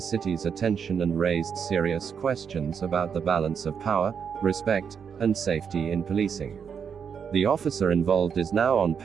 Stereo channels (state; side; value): quieter; left; 7.0 dB